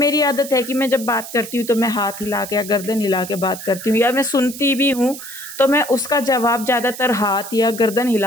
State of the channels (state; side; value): noise; right; hiss, 12 dB below the sound